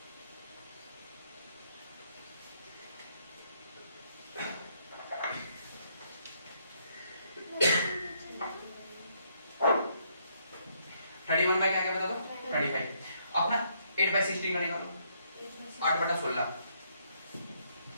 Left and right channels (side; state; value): both; inverted; correlation -0.72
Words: क्या क्या बता दो 25, अपना 8/16 का निकालो, 8/16